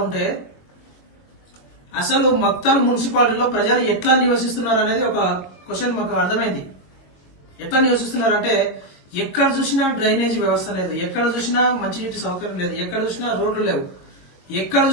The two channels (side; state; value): right; late; 22 ms